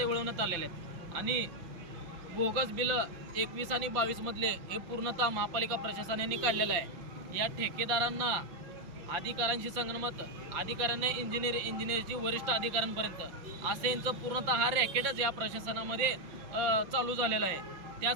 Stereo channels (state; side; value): late; left; 5.8 ms